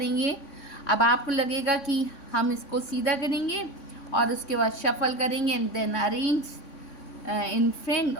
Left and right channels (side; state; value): right; late; 3.6 ms